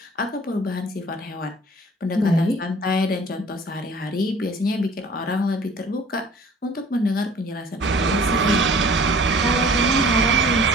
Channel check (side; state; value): both; normal; correlation 0.49